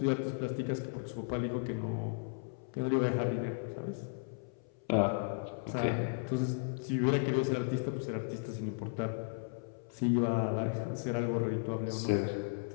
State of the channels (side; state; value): right; silent; 54 dB below the other